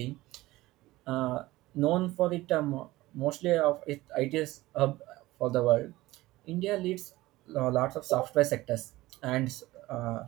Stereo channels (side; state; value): left; quieter; 18.3 dB